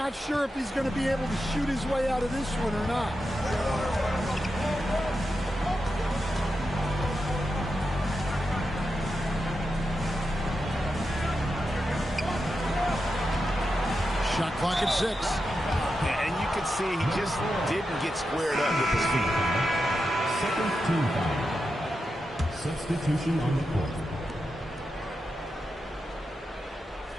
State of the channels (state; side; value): normal; both; correlation 0.88